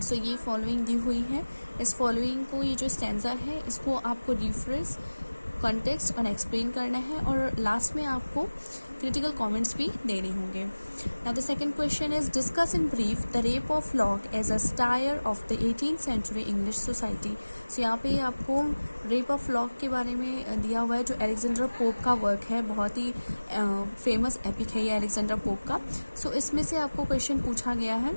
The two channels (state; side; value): inverted; both; correlation -1.00